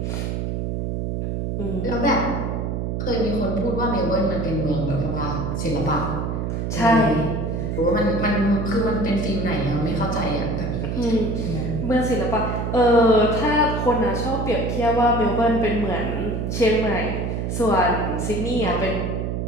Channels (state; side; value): noise; right; hum, 2 dB below the sound